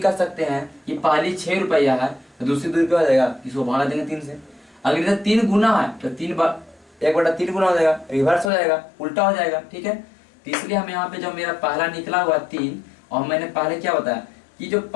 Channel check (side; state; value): right; drops out; at 8.5 s